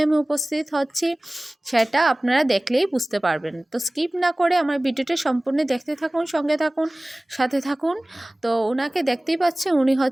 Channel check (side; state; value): both; normal; correlation 0.98